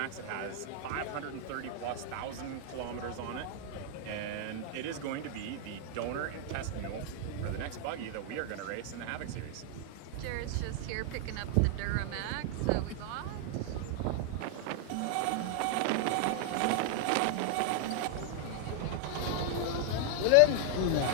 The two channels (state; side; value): different; both; correlation 0.00